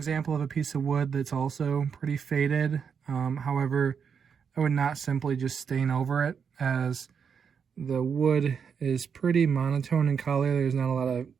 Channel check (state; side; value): quieter; left; 6.7 dB